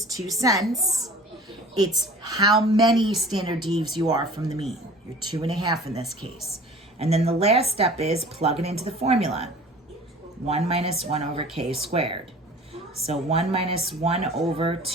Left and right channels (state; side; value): normal; both; correlation 0.44